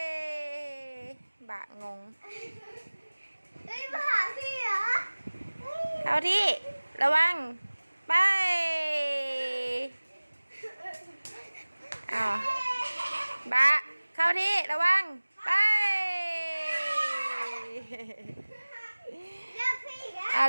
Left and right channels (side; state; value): both; inverted; correlation -1.00